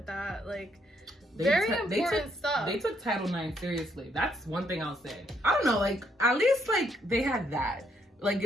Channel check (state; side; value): normal; both; correlation 0.73